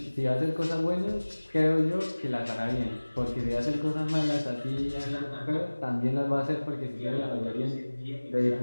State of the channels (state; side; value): inverted; both; correlation -1.00